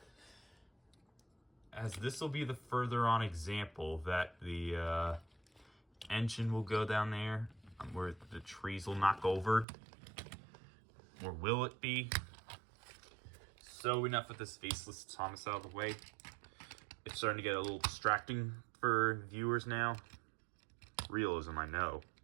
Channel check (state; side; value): drops out; left; at 9.7 s